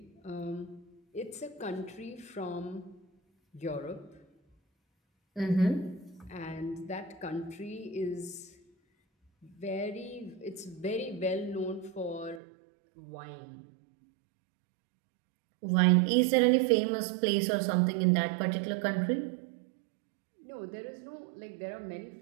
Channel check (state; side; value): drops out; left; at 12.4 s